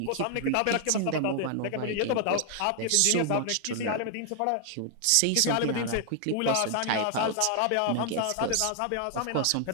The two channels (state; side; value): different; both; correlation 0.00